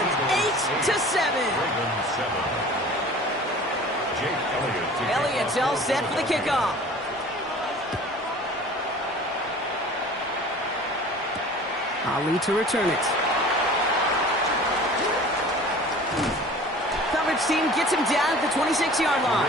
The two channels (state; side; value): normal; both; correlation 0.44